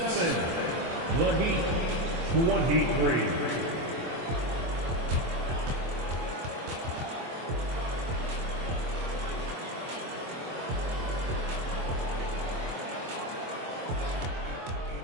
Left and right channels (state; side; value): late; left; 24 ms